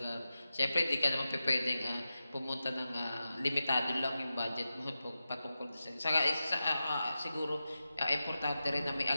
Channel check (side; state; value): both; inverted; correlation -0.92